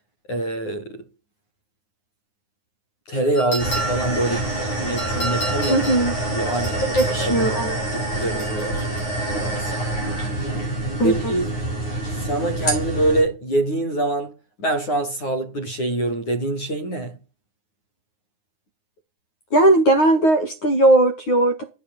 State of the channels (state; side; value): late; right; 9.6 ms